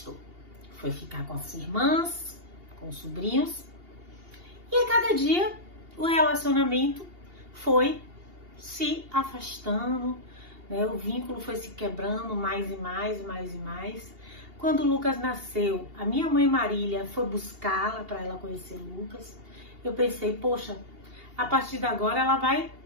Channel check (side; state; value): left; late; 2.8 ms